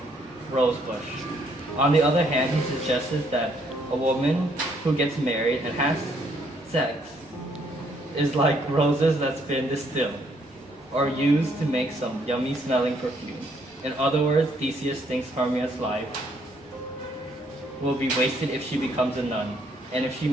rose bush. On the other hand, he suggests that a woman who gets married and has sex is like roses that's been distilled or used to make some yummy smelling perfume. In other words, Theseus thinks Hermia's life will be wasted if she becomes a nun, and if she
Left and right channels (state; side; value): normal; both; correlation 0.69